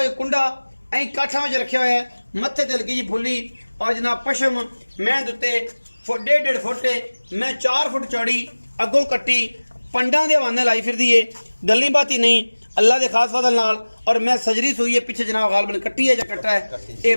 कुंडा ऐ काठा में रखे हुए है मत्थे ते हल्की जी फुली और जनाब पशम मैं दुते 1.5 फुट मैं 4 फुट चौड़ी अगों कट्टी पंडा दे हवाने लाई फिरदी है। गल्ली बाती नहीं अल्लाह के खास फजल नाल और मैं सजरी सुई है पिछे जनाब गालबन कट्टी है या कट्टा है ये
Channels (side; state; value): both; inverted; correlation -1.00